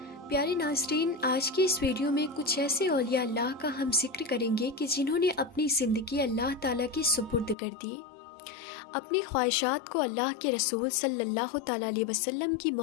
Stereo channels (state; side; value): drops out; right; at 7.6 s